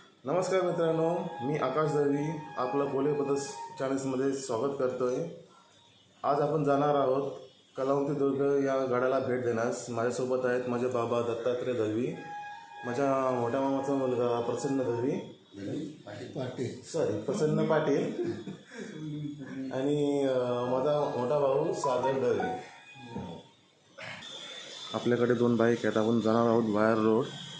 नमस्कार मित्रांनो, मी आकाश दळवी आपलं पोले पदस चॅनल्समध्ये स्वागत करतोय। आज आपण जाणार आहोत कलावंती दुर्ग या गडाला भेट देण्यास। माझ्यासोबत आहेत माझे बाबा दत्तात्रय दळवी, माझ्या मोठ्या मामाचा मुलगा प्रसन्न दळवी प्रसन्न पाटील आणि माझा मोठा भाऊ सागर दळवी। आपल्याकडे 2 बाईक आहेत। आपण जाणार आहोत वायर रोड,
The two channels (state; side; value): identical; both; correlation 1.00